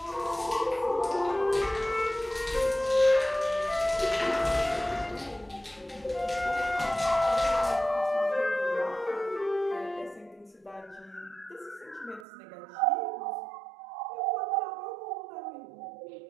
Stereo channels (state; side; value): drops out; left; at 12.2 s